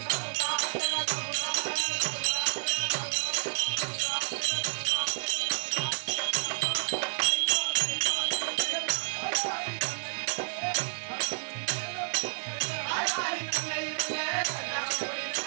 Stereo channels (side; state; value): left; silent; digital silence